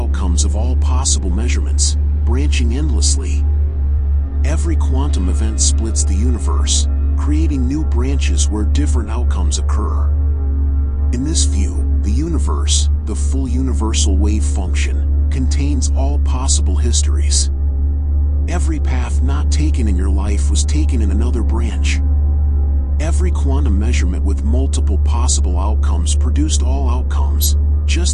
of all possible measurements, branching endlessly. Every quantum event splits the universe, creating new branches where different outcomes occur. In this view, the universe, the full universal wave function, contains all possible histories. Every path not taken in your life was taken in another branch. Every quantum measurement with multiple possible outcomes produced all outcomes,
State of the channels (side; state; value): both; identical; correlation 1.00